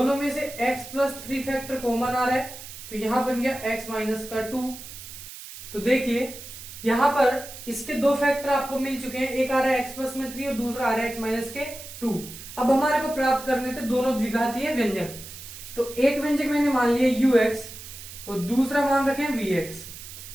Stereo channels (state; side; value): noise; right; hiss, 13 dB below the sound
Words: में से x प्लस 3 फैक्टर कॉमन आ रहा है तो यहां बन गया x माइनस का 2। तो देखिए यहां पर इसके 2 फैक्टर आपको मिल चुके हैं, एक आ रहा है x प्लस में 3 और दूसरा आ रहा है x माइनस के 2। अब हमारे को प्राप्त करने थे दोनों द्विघातीय व्यंजक। तो एक व्यंजक मैंने मान लिया ux और दूसरा मान रखे vx।